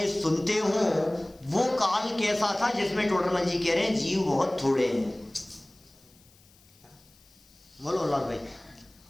सुनते हों, वो काल कैसा था जिसमें टोडरमल जी कह रहे हैं जीव बहुत थोड़े हैं। बोलो लाल भाई,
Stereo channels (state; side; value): noise; left; hiss, 29 dB below the sound